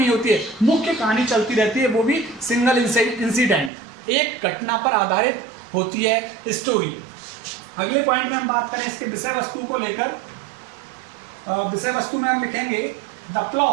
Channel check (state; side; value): drops out; left; at 3.7 s